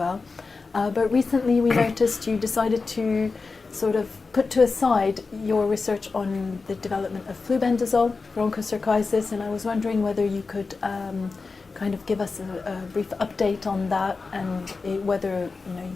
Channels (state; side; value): quieter; right; 4.2 dB